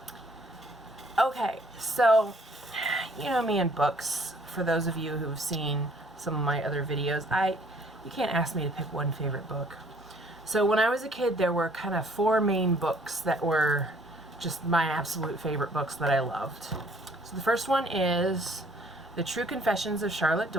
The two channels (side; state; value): both; normal; correlation 0.60